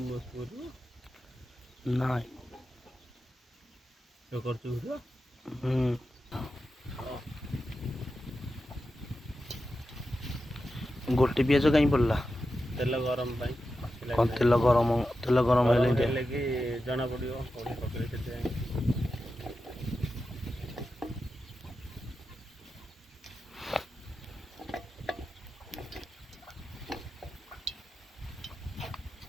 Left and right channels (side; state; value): both; normal; correlation 0.90